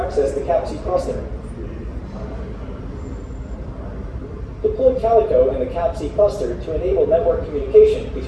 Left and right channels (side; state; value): both; identical; correlation 1.00